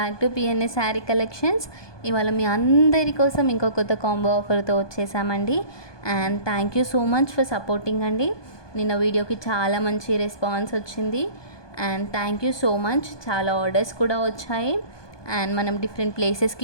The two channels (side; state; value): right; late; 1.2 ms